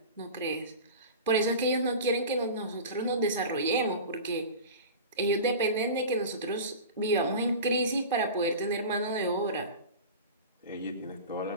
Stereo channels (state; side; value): inverted; both; correlation -0.32